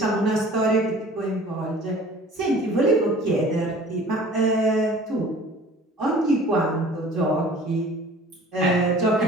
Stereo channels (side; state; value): both; normal; correlation 0.47